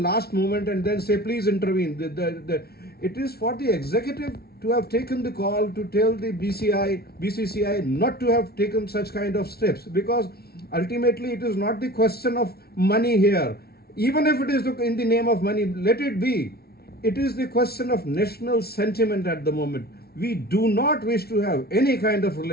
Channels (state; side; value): late; right; 0.45 ms